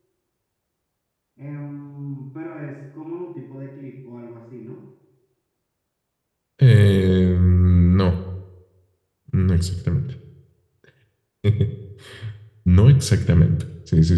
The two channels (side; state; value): both; identical; correlation 1.00